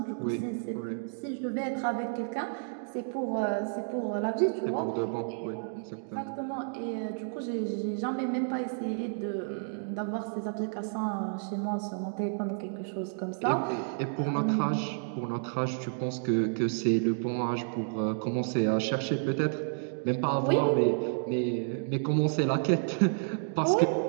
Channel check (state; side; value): silent; left; digital silence